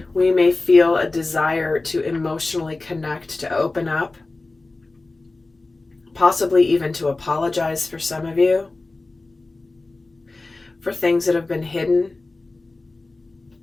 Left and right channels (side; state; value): right; quieter; 3.3 dB